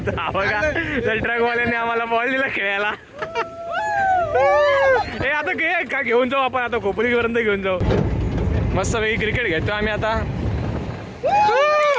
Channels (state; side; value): identical; both; correlation 1.00